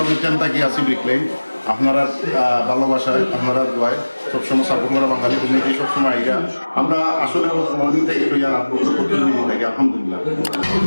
থাকি আছি ব্রিক লেন। আপনারা ভালোবাসায়, আপনারা দোয়ায় সবসময় সাপোর্ট করা বাঙালি কমিউনিটি সবসময় আইয়া আমরা আসলে মর্নিং থেকে লইয়া রাত পর্যন্ত প্রতিদিন থাকি আলহামদুলিল্লাহ।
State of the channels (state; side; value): inverted; both; correlation -1.00